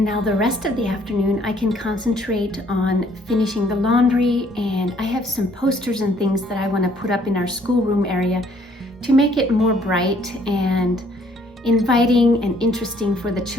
now the rest of the afternoon I can concentrate on finishing the laundry, and I have some posters and things that I want to put up in our schoolroom area to make it more bright and inviting and interesting for the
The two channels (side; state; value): both; normal; correlation 0.63